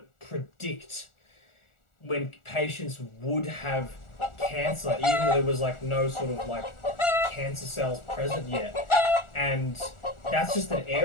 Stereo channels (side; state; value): right; late; 1.4 ms